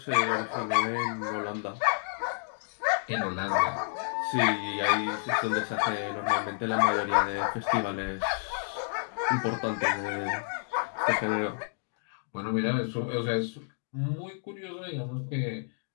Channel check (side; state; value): right; silent; digital silence